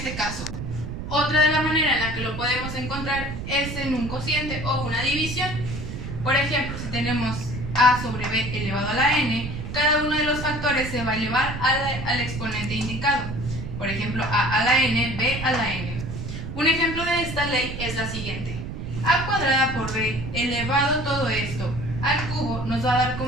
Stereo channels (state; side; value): noise; right; rumble, 7 dB below the sound